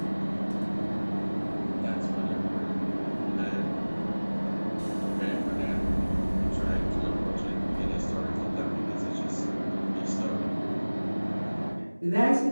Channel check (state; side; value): inverted; both; correlation -1.00